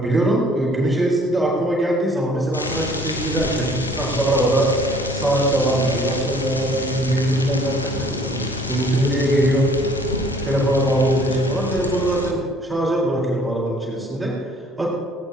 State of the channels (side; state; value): both; normal; correlation 0.57